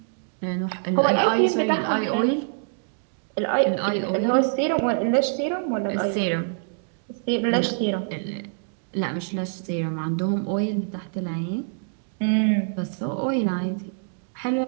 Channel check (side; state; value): left; silent; digital silence